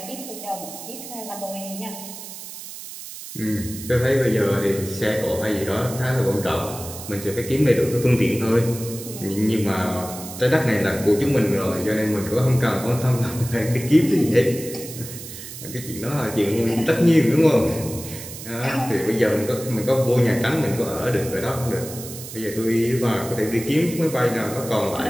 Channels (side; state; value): right; noise; hiss, 12 dB below the sound